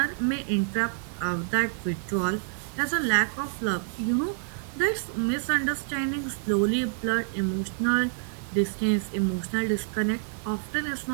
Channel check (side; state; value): left; silent; digital silence